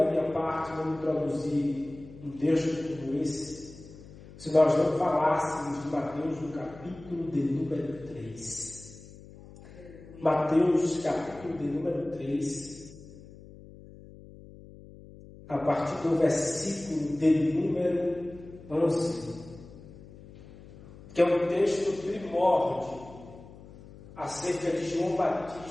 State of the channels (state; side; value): noise; left; hum, 19 dB below the sound